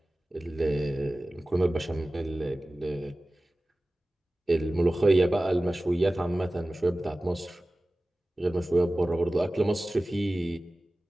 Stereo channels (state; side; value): normal; both; correlation 0.97